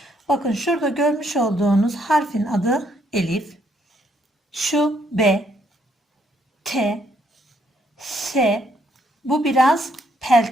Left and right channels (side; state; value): both; normal; correlation 0.71